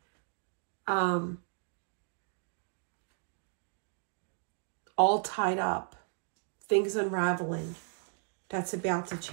All tied up. Things unraveling. That's about to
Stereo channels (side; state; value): left; silent; 55 dB below the other